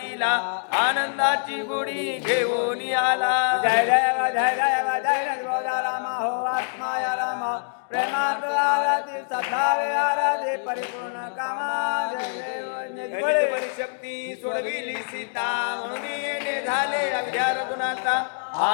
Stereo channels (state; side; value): silent; right; digital silence